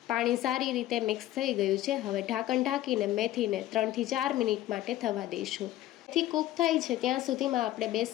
પાણી સારી રીતે મિક્સ થઈ ગયું છે। હવે ઢાંકણ ઢાંકીને મેથીને 3 થી 4 મિનિટ માટે થવા દઈશું। મેથી કૂક થાય છે ત્યાં સુધીમાં આપણે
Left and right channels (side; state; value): right; quieter; 14.5 dB